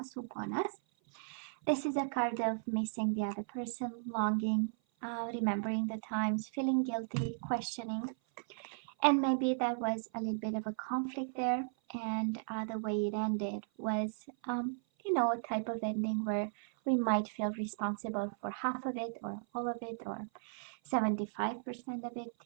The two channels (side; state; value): left; silent; 54 dB below the other